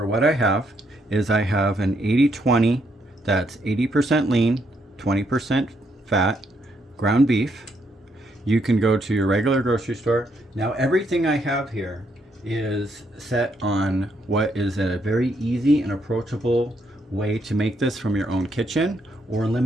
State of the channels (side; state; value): both; normal; correlation 0.75